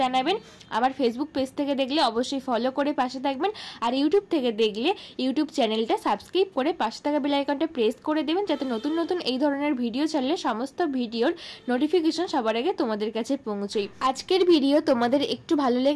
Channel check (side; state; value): both; identical; correlation 1.00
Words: জানাবেন। আমার ফেসবুক পেজ থেকে দেখলে অবশ্যই ফলো করে পাশে থাকবেন, আর ইউটিউব থেকে দেখলে ইউটিউব চ্যানেলটা সাবস্ক্রাইব করে পাশে থাকা বেল আইকনটা প্রেস করে দেবেন, যাতে নতুন নতুন এই ধরনের ভিডিও ছাড়লে সমস্ত ভিডিওর নোটিফিকেশন সবার আগে তোমাদের কাছে পৌঁছয়। আজকের ভিডিও তোমাদের একটু ভালো